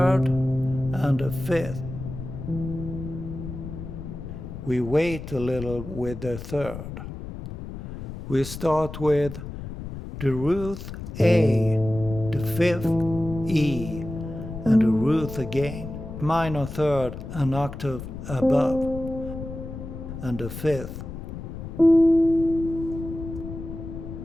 and the fifth. We wait a little with the third. We start with the root A, the fifth E, and the root again. Minor third an octave above, and the fifth.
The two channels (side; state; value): left; noise; rumble, 9 dB below the sound